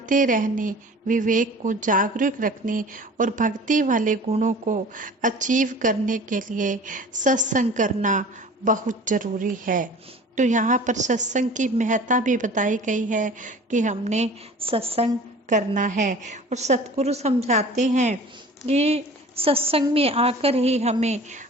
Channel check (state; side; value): normal; both; correlation 0.43